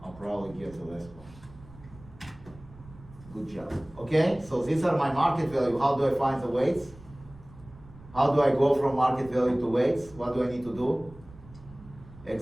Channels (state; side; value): noise; right; rumble, 20 dB below the sound